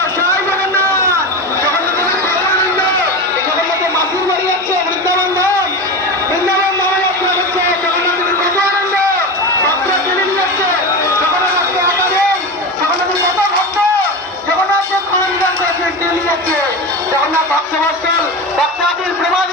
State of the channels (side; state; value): both; normal; correlation 0.23